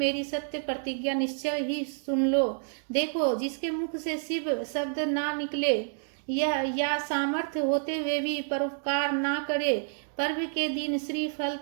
सत्य प्रतिज्ञा निश्चय ही सुन लो। देखो, जिसके मुख से शिव शब्द ना निकले या सामर्थ्य होते हुए भी परोपकार ना करे, पर्व के दिन श्रीफल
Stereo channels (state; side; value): silent; left; digital silence